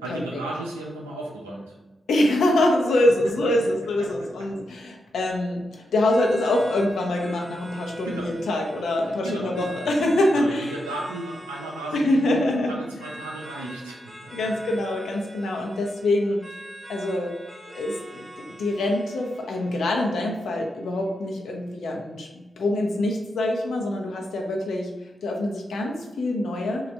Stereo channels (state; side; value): normal; both; correlation 0.84